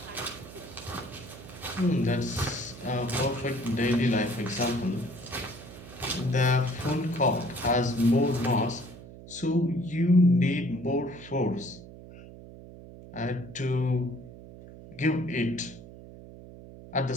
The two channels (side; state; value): right; noise; hum, 16 dB below the sound